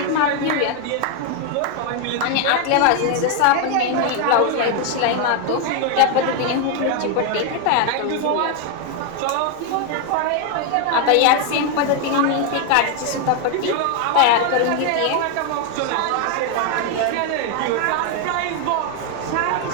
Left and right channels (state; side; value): different; both; correlation 0.01